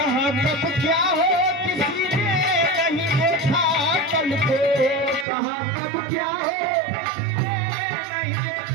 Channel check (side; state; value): left; drops out; at 5.2 s